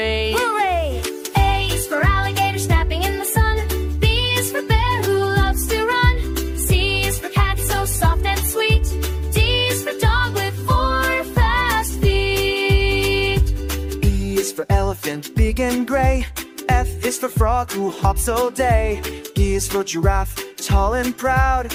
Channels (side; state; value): both; identical; correlation 1.00